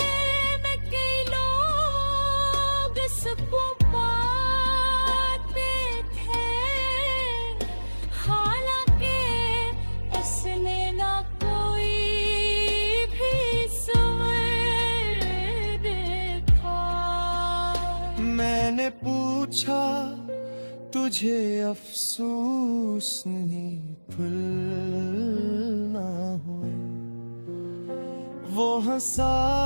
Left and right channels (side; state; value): both; inverted; correlation -1.00